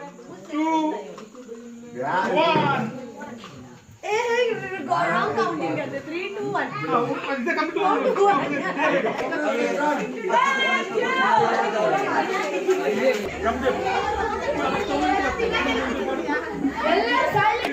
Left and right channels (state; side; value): identical; both; correlation 1.00